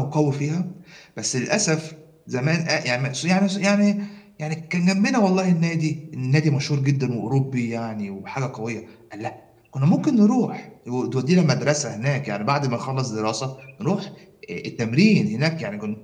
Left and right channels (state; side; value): identical; both; correlation 1.00